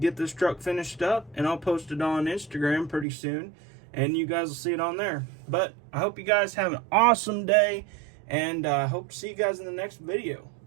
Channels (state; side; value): drops out; left; at 3.1 s